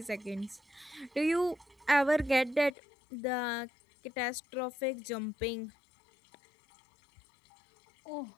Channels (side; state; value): right; drops out; at 2.7 s